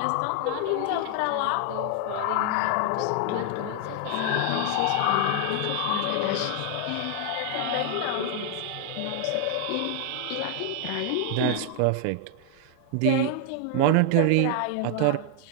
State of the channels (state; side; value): different; both; correlation 0.00